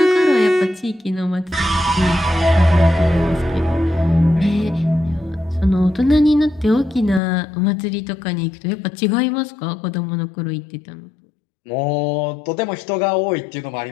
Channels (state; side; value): drops out; right; at 7.2 s